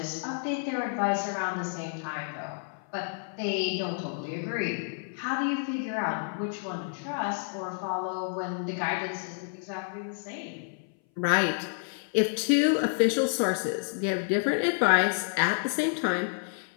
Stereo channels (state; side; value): silent; right; 57 dB below the other